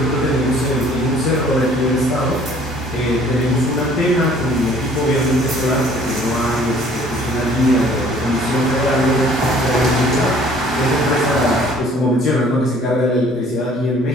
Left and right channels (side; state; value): both; normal; correlation 0.55